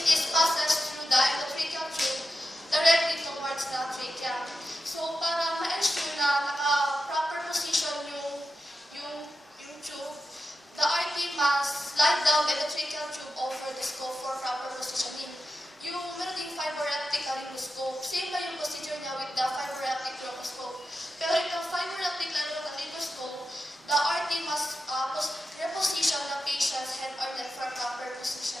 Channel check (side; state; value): both; normal; correlation 0.90